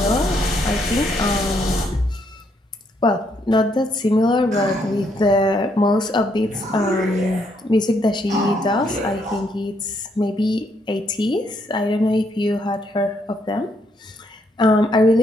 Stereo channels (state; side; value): normal; both; correlation 0.73